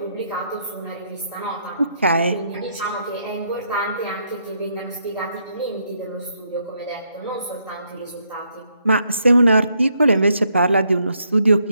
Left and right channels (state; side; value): inverted; both; correlation -0.75